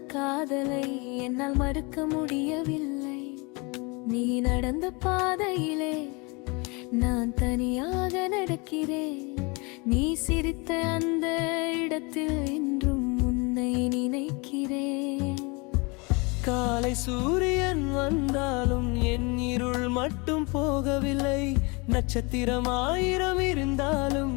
காதலை என்னால் மறுக்க முடியவில்லை. நீ நடந்த பாதையிலே நான் தனியாக நடக்கிறேன். நீ சிரித்த அந்த இடத்தில் இன்றும் உன்னை நினைக்கிறேன். காலை சூரியன் வந்தாலும் என் இருள் மட்டும் போகவில்லை. நட்சத்திரம் 1000 இருந்தாலும்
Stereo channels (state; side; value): quieter; right; 28.7 dB